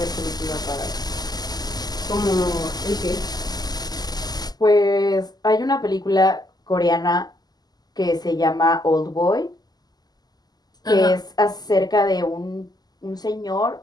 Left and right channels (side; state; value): right; late; 0.20 ms